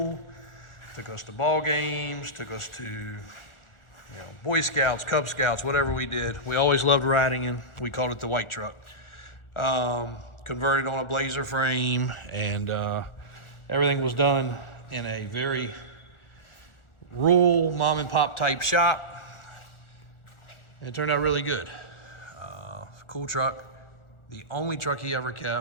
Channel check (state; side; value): late; right; 1.4 ms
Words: took us to ball games, took us to you know, Boy Scouts, Cub Scouts, whatever we did. We always loved riding in. We called it the white truck. Converted on a Blazer frame, and everything was done in a very rural mom and pop type shop. It turned out really good. Cool truck. The only truck he ever